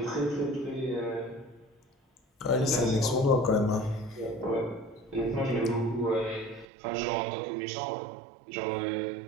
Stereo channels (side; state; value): left; drops out; at 6.7 s